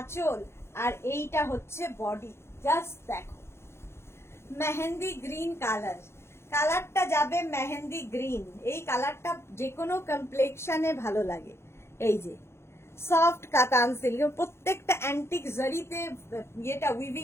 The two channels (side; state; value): right; late; 0.12 ms